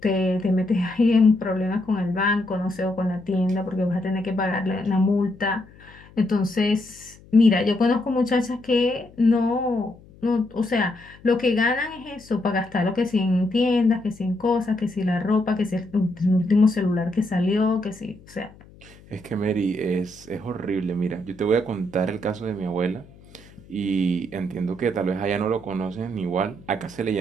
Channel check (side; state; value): left; noise; hum, 24 dB below the sound